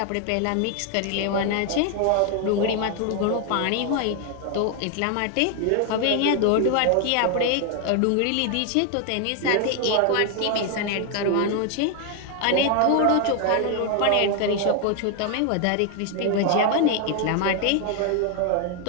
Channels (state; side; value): different; both; correlation 0.01